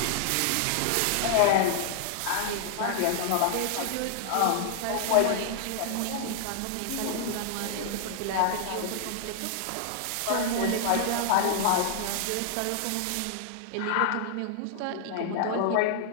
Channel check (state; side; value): different; both; correlation 0.00